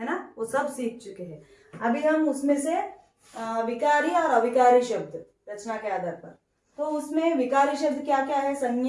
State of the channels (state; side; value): identical; both; correlation 1.00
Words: ना, वो सब सीख चुके हैं। अभी हम उसमें से विकारी और अविकारी शब्द रचना के आधार पर, तो उसमें विकारी शब्द क्या क्या है?